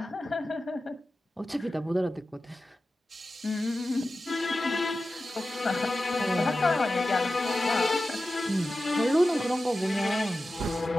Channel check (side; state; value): both; normal; correlation 0.94